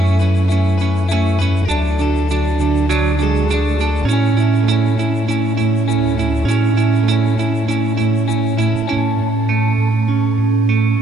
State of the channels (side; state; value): both; normal; correlation 0.71